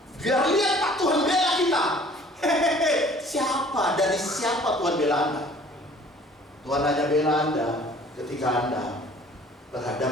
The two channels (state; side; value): normal; both; correlation 0.52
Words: Biar lihat Pak Tuhan bela kita. Siapa, dari siapa Tuhan bela Anda? Tuhan hanya bela Anda ketika Anda